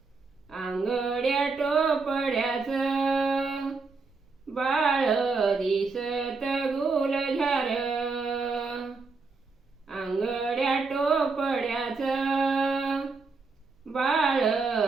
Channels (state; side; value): quieter; left; 4.2 dB